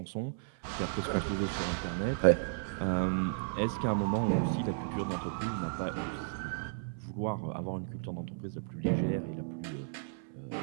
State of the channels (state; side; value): silent; left; 55 dB below the other